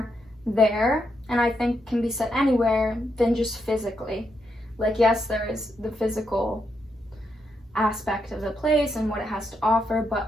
there, and I think can be said anywhere than just physically. Like, yes, there is the physical aspect of the place and what it has to offer, but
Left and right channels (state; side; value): normal; both; correlation 0.81